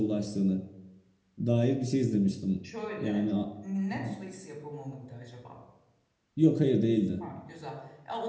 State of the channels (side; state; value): both; identical; correlation 1.00